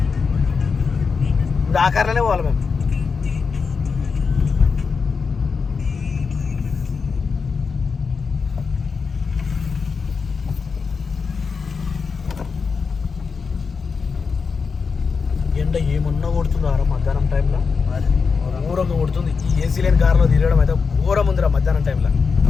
ఇప్పుడు ఆ కార్లోనే పోవాలి మేము. ఎండ ఏమన్నా కొడుతుందా మధ్యాహ్నం టైంలో? ఘోరంగా కొడుతుంది. ఈ ఏసీ లేని కారులో తిరగడం అయితే ఘోరం ఉందిరా మధ్యాహ్నం టైంలో.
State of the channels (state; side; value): quieter; right; 5.2 dB